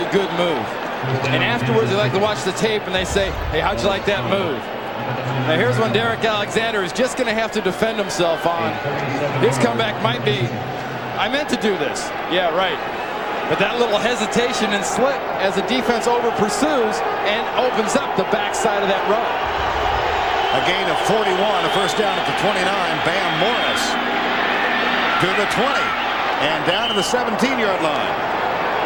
good move. And afterwards, they like to watch the tape, and they say, hey, how'd you like that move? Now here's one Derek Alexander is just going to have to defend himself on. His comeback might be, I meant to do this. Yeah, right. But that little hesitation and slip as the defense over pursues and opens up the backside of that row. A gain of 41, a first down at the 29. Bam Morris to the 20 and down to the 17-yard line.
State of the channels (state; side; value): identical; both; correlation 1.00